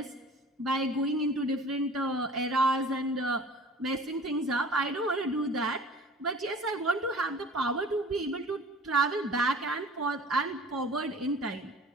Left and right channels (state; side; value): normal; both; correlation 0.45